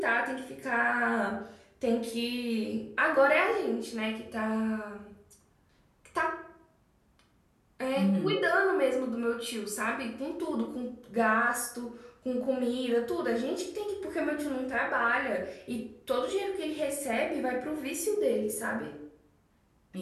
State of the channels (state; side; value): identical; both; correlation 1.00